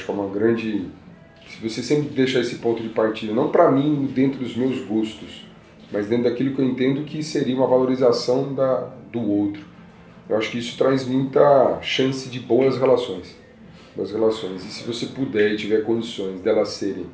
que é uma grande... Se você sempre deixar esse ponto de partida, não para mim dentro dos meus gostos, mas dentro daquilo que eu entendo que seria uma valorização do outro. Eu acho que isso traz muita chance de boas relações. E se você puder e tiver condições delas serem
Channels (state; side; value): identical; both; correlation 1.00